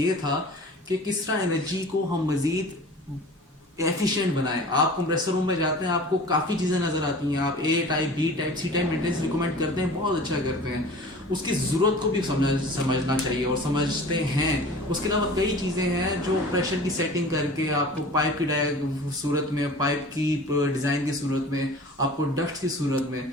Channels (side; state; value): both; normal; correlation 0.41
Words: था कि किस तरह एनर्जी को हम मज़ीद एफिशिएंट बनाएं। आप कंप्रेसर रूम में जाते हैं, आपको काफ़ी चीज़ें नज़र आती हैं, आप A type B type C type maintenance recommend करते हैं, बहुत अच्छा करते हैं, उसकी ज़रूरत को भी समझना चाहिए और समझते हैं। उसके अलावा कई चीज़ें हैं जो प्रेशर की सेटिंग करके आपको पाइप की सूरत में, पाइप की डिज़ाइन की सूरत में, आपको डक्ट की सूरत में